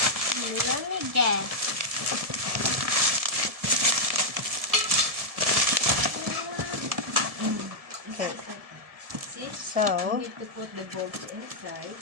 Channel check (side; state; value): left; late; 1.7 ms